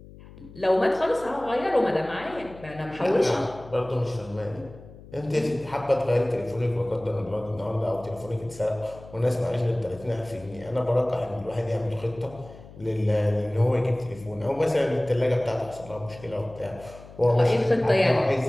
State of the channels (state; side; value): noise; left; hum, 19 dB below the sound